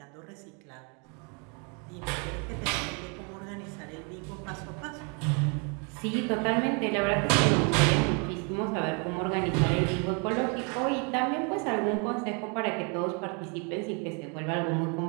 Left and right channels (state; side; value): quieter; left; 35.0 dB